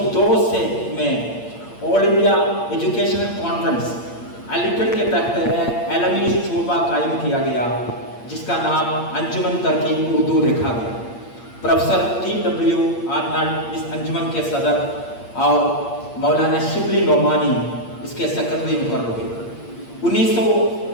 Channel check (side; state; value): right; late; 8.7 ms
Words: से में all India educational conference Aligarh के तहत आलमी शोबा कायम किया गया, जिसका नाम अंजुमन तरक्की उर्दू रखा गया। Professor T.W. आर्नल्ड इस अंजुमन के सदर और मौलाना शिबली नोमानी इसके सेक्रेटरी मुकर्रर हुए।